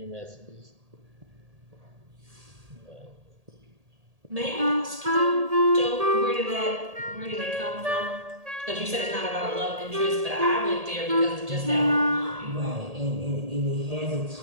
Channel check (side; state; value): left; late; 1.8 ms